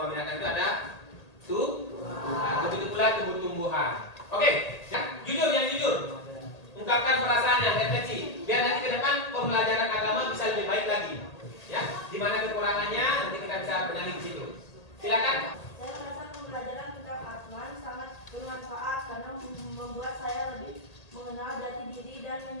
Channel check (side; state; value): right; late; 1.8 ms